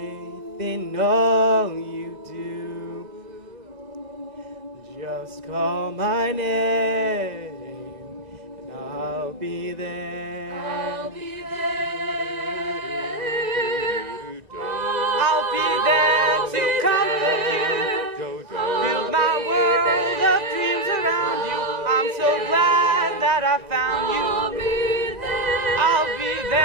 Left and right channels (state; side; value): late; left; 1.9 ms